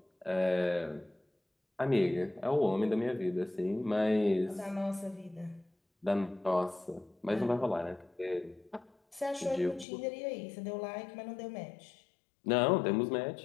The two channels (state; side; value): drops out; right; at 9.9 s